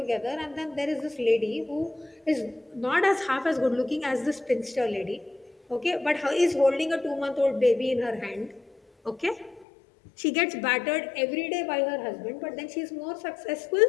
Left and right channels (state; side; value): drops out; right; at 9.7 s